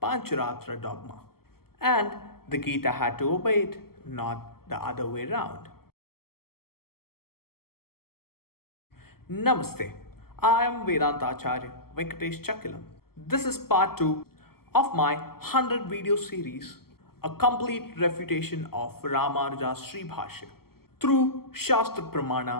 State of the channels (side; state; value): right; late; 0.94 ms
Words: Pāñcharātra dogma. And the Gita had to obey it, not the other way round. Namaste. I am Vedānta Āchārya Venkatesh Chakkilam. This is part 2 of my 100 video series, a complete refutation of Rāmānuja's Śrī Bhāṣya through Shastra